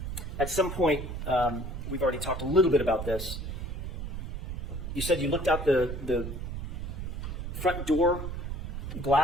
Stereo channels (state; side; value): noise; right; rumble, 5 dB below the sound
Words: At some point, we've already talked a little bit about this. You said you looked out the front door